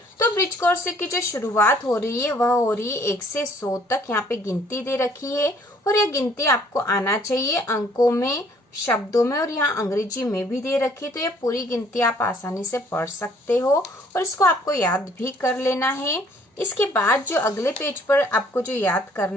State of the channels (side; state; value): both; normal; correlation 0.60